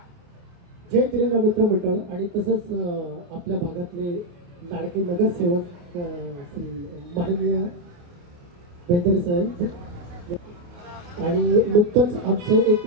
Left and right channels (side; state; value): left; late; 28 ms